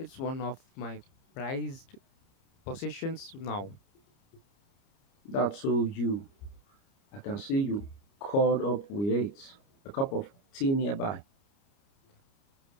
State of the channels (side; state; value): right; late; 30 ms